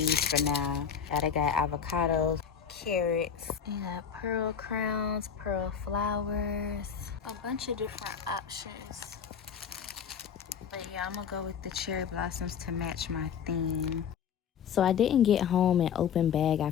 for now. I got avocados, carrots, you got pearl crowns, pearl flowers, a bunch of different options. But yeah, I'm gonna go with the cherry blossoms to match my theme. So I didn't get home and open bag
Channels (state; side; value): quieter; right; 7.6 dB